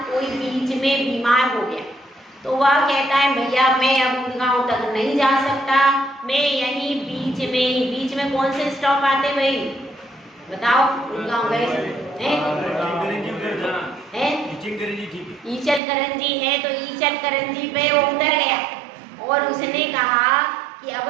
कोई बीच में बीमार हो गया तो वह कहता है भैया मैं अब गुड़गांव तक नहीं जा सकता, मैं यहीं बीच में कौन से स्टॉप आते भाई बताओ? गुड़गांव गए ईचलकरंजी है, तो ईचलकरंजी पे वो उतर गया और उसने कहा कि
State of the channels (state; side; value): drops out; left; at 15.8 s